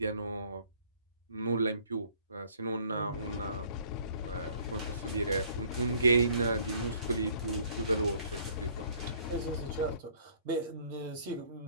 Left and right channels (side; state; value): both; inverted; correlation -0.58